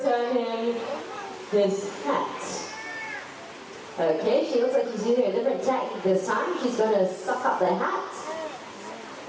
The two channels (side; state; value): both; identical; correlation 1.00